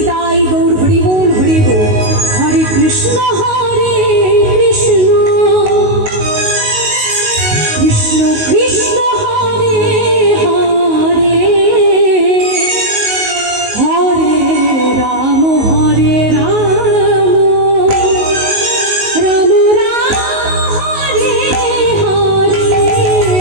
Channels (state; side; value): late; left; 19 ms